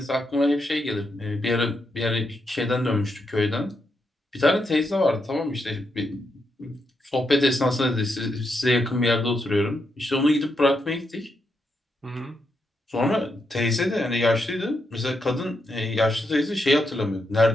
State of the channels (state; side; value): normal; both; correlation 0.82